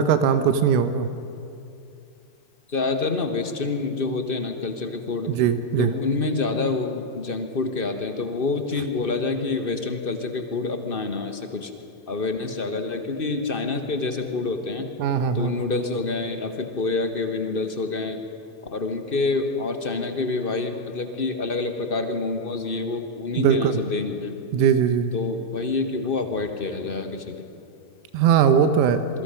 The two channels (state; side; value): late; right; 2.6 ms